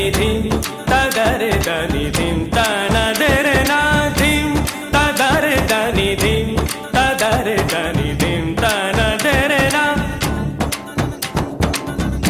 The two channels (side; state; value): both; identical; correlation 1.00